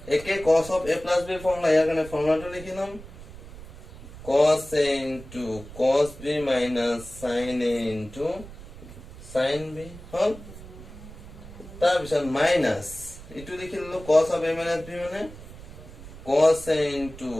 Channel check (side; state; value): right; noise; rumble, 16 dB below the sound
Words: একে cos of a plus b formula ইয়ার কারণে ফর্মুলাটা লিখি নাম cos a into cos b minus sin a into sin b হল তার পিছত মাইনাস এটু লিখি ললো cos of a minus b মানে cos a into